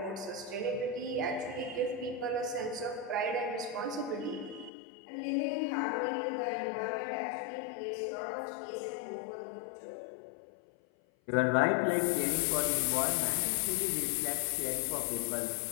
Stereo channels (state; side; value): drops out; right; at 4.7 s